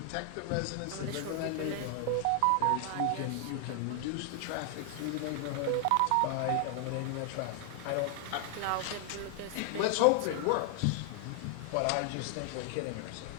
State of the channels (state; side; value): different; both; correlation 0.00